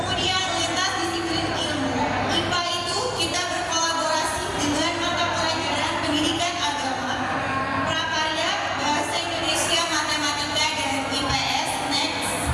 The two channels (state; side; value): identical; both; correlation 1.00